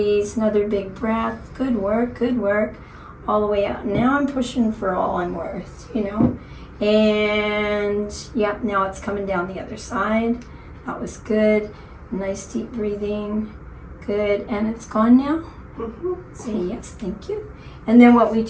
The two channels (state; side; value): identical; both; correlation 1.00